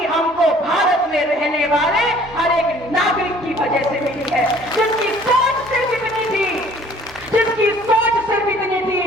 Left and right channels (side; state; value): both; normal; correlation 0.54